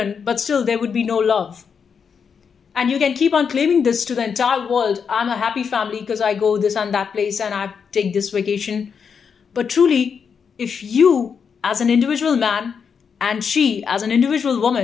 but still there would be no love. And you can keep on claiming this to the entire world. I'm a happy family because I go this and that place and I take this vacation. But truly, if you as an individual man and she as an individual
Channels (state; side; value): quieter; right; 6.5 dB